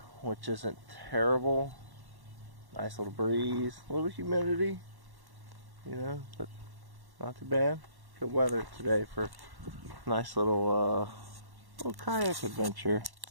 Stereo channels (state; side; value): late; left; 1.1 ms